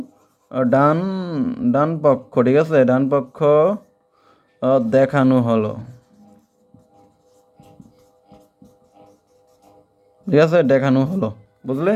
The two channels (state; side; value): identical; both; correlation 1.00